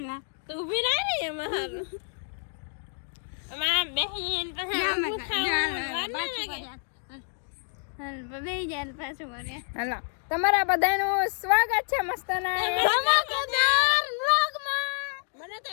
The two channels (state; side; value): silent; right; 59 dB below the other